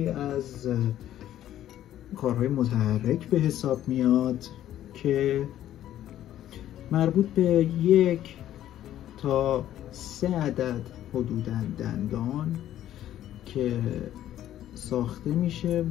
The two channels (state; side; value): quieter; right; 12.2 dB